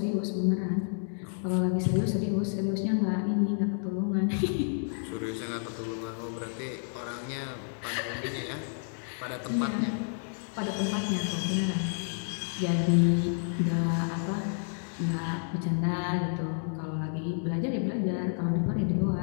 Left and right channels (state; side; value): silent; right; digital silence